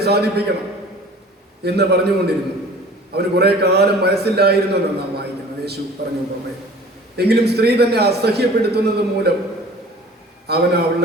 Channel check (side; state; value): both; normal; correlation 0.46